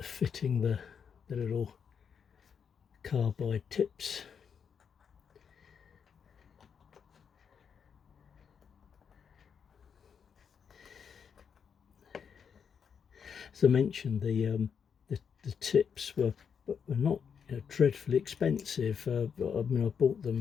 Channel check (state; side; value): quieter; right; 6.9 dB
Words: the little carbide tips. As I mentioned, the tips were not dreadfully expensive. I mean, I bought